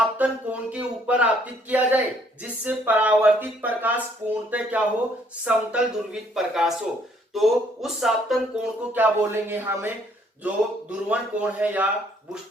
कोण के ऊपर आपतित किया जाए जिससे परावर्तित प्रकाश पूर्णतः क्या हो? समतल ध्रुवित प्रकाश हो, तो उस आपतन कोण को क्या बोलेंगे? हमें जो ध्रुवण कोण है या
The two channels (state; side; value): normal; both; correlation 0.65